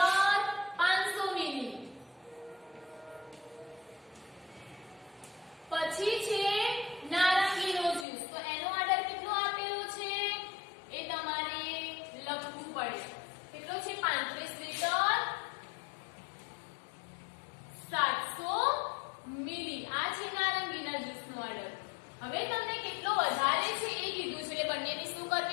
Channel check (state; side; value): drops out; right; at 8.1 s